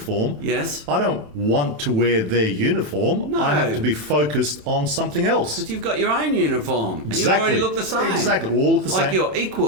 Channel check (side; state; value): left; late; 27 ms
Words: Yes. I don't want to wear their uniform. No. I have to be focused on something else. Because you've got your own uniform. And Exactly. you already look the same. Exactly. We all look the like same. you're